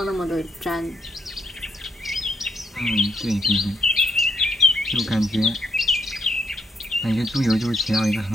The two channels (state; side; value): normal; both; correlation 0.75